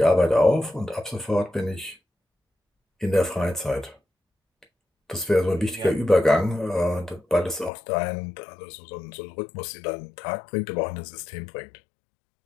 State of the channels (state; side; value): drops out; right; at 7.7 s